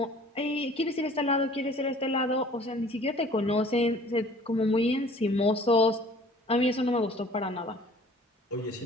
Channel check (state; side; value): normal; both; correlation 0.50